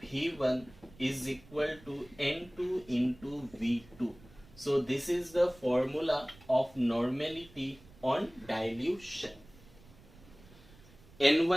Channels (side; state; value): right; noise; rumble, 23 dB below the sound